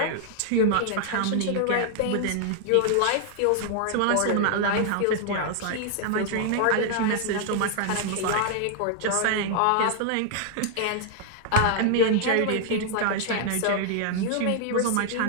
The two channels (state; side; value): different; both; correlation 0.00